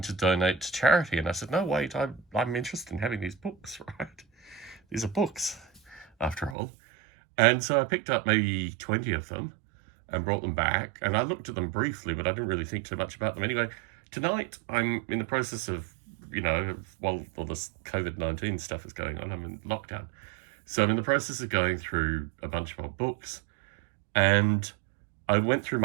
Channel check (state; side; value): drops out; left; at 6.6 s